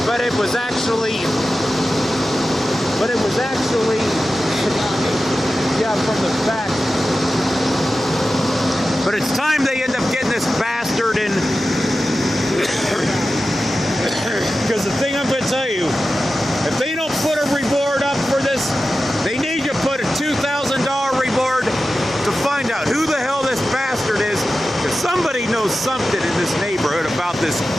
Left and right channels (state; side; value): normal; both; correlation 0.93